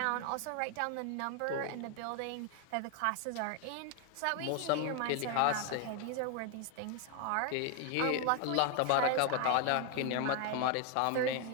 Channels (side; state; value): both; different; correlation 0.00